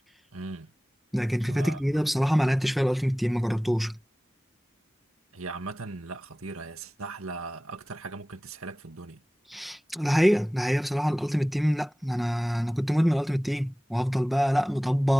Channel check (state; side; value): normal; both; correlation 0.98